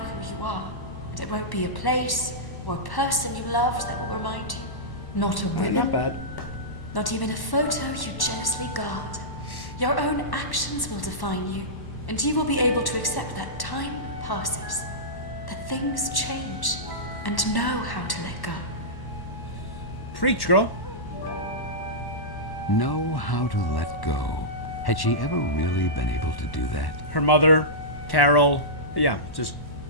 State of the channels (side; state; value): right; late; 1.1 ms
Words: you are. And it won't be a place or a person you loved that will remind you. Not a ribbon. Not bad. Not even a photo you jealously guard. Your own actions will define you. And you will be able to accept that time passes. That things change. And know how to let go. Preach, girl. Know how to let go. Had she ever really been able to do that? Her mother, Carole. Yeah, just...